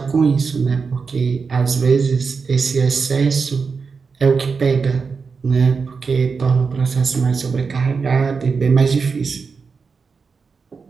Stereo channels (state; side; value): quieter; left; 5.1 dB